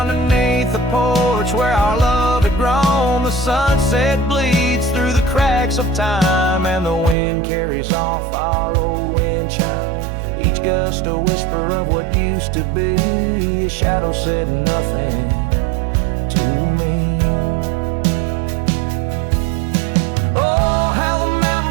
the porch where our love had grown. The sunset bleeds through the cracks of time, and the wind carries off our old wind chime. Each gust a whisper of what used to be. His shadow said nothing to me. Oh, how the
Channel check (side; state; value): left; drops out; at 7.2 s